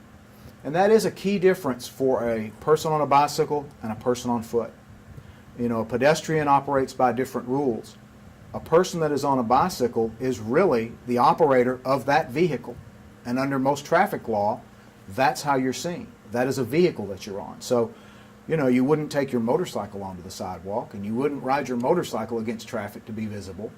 And that is a key difference for a person on a bicycle and a person on foot. You know, a pedestrian operates by different rules. A person that is on a bicycle is really the operator of that vehicle. And under most traffic law, that's how you're seen. That is a vehicle that you're on. So, you know, you wouldn't take your motorcycle onto the sidewalk, and you wouldn't ride your motorcycle against traffic to be visible.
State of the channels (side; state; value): both; identical; correlation 1.00